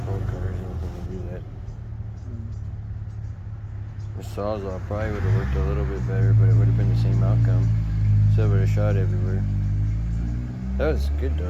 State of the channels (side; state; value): both; identical; correlation 1.00